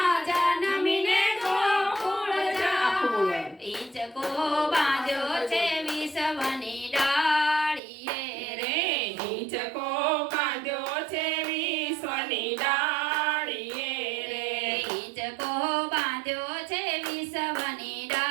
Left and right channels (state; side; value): drops out; left; at 7.8 s